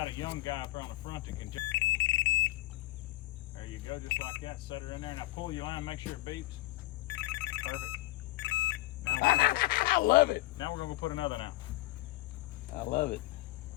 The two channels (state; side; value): quieter; right; 18.7 dB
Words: a young guy up on the front that can. There you go, just like that. Set her in there, and I pull your line, make sure it beeps. Perfect. Now I love it. now we're gonna go put another now. I love it.